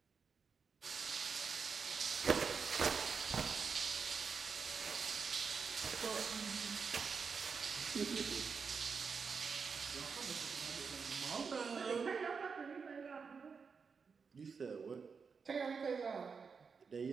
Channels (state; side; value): quieter; left; 5.6 dB